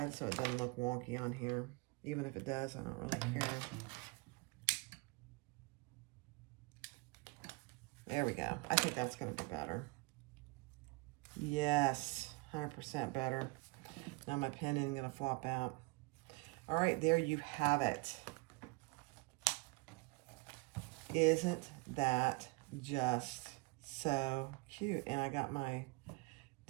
so it doesn't look wonky on here. Even if it does, I don't really care. There we go. I think that's going to be better. Yes, 100% better. Now my pen isn't going to flop out. All right, there you have it. Isn't that just so cute? And I got my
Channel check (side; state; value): left; quieter; 25.1 dB